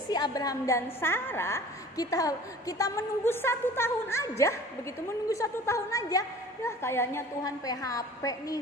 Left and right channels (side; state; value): both; normal; correlation 0.45